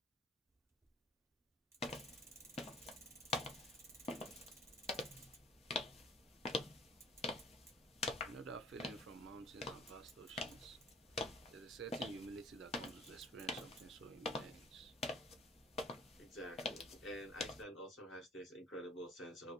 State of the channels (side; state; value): both; normal; correlation 0.52